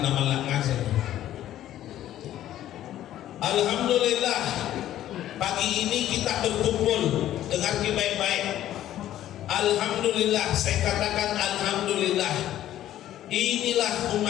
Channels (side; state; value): right; quieter; 12.6 dB